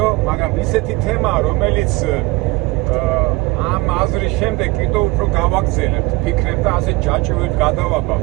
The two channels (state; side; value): quieter; left; 22.6 dB